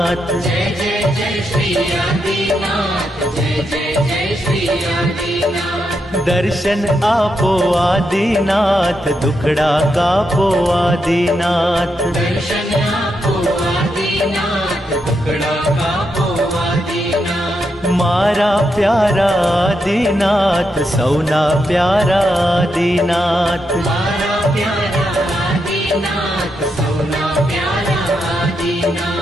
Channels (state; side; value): normal; both; correlation 0.83